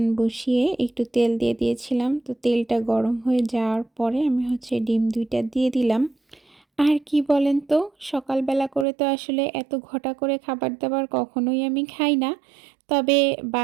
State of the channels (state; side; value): drops out; left; at 8.8 s